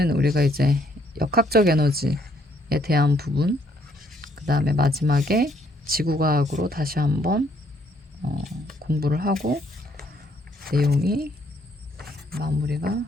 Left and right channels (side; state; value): both; normal; correlation 0.68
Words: 우리가 이제 역학적 에너지에 대한 부분, 그 다음에 마지막에 지구과학으로 다시 한번 공부를 하고 내용이 마무리가